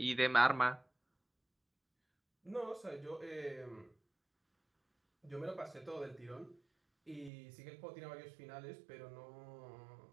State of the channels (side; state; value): left; drops out; at 7.3 s